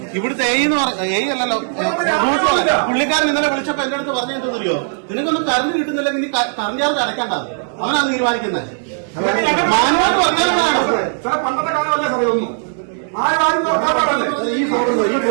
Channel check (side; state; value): left; silent; digital silence